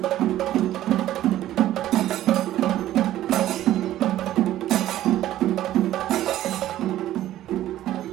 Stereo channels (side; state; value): left; quieter; 13.5 dB